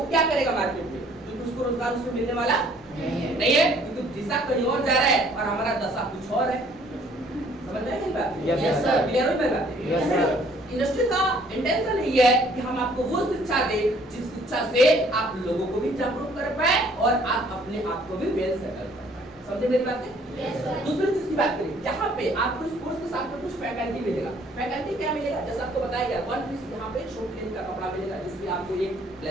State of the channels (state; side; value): normal; both; correlation 0.60